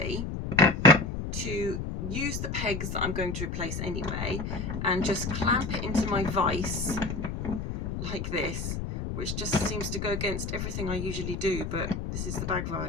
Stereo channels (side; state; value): left; noise; rumble, 4 dB below the sound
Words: to use the pegs that I'm going to replace anyway and just clamp it into my vise like this, which just seems to go against everything I usually do, but this is the bag